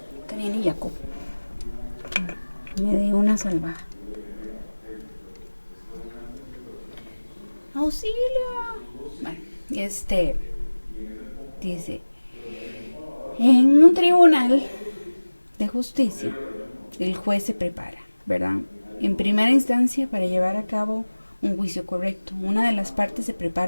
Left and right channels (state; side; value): inverted; both; correlation -1.00